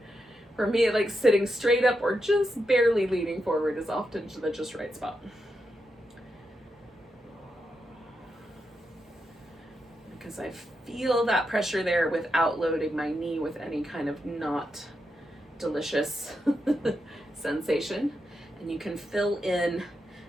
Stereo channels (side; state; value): both; normal; correlation 0.85